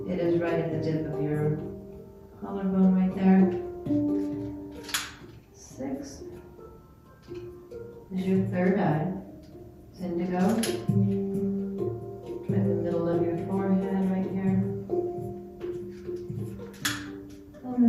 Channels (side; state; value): both; identical; correlation 1.00